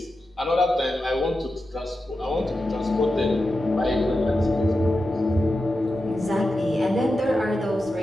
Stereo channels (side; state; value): both; normal; correlation 0.91